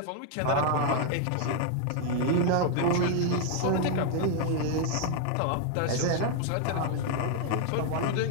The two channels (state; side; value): different; both; correlation 0.00